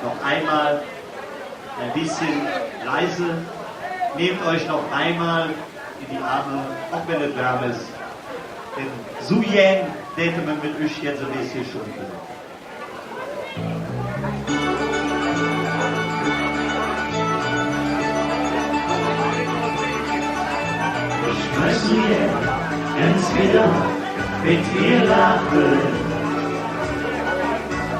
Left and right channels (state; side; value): identical; both; correlation 1.00